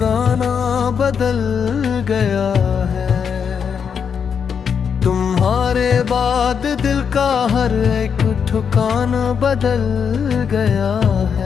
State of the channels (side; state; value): right; quieter; 6.9 dB